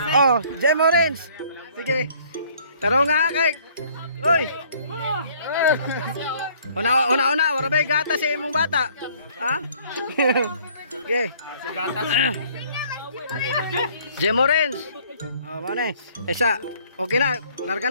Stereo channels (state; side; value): inverted; both; correlation -0.58